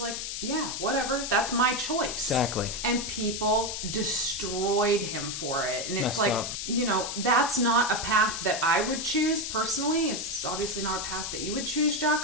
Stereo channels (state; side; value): noise; left; hiss, 4 dB below the sound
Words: like, yeah, whatever. That's my choice. Exactly. And people destroyed him for it. And it's Messed like, up. that's not a path that I would choose personally. It's obviously not a path that you would choose,